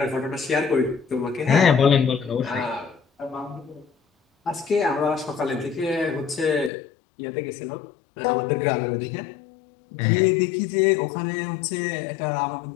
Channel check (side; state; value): right; drops out; at 6.7 s